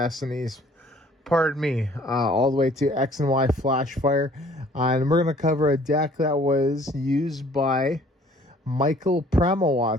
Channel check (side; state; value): both; normal; correlation 0.56